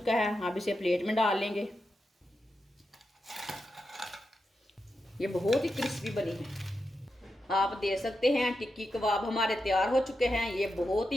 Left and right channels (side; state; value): both; normal; correlation 0.88